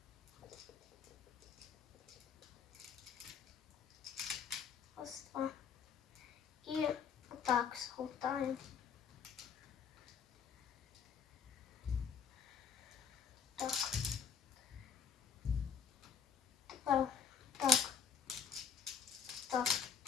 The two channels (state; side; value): quieter; right; 6.2 dB